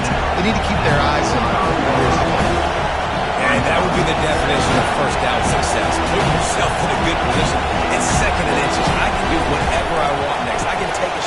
they need to keep their eyes on for years to come. And that would be the definition of first down success. Put yourself in a good position. It's 2nd and inches. I can do whatever I want next. I can take a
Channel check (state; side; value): identical; both; correlation 1.00